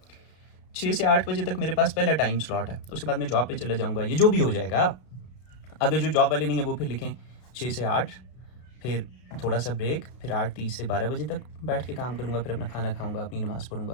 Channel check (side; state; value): right; late; 32 ms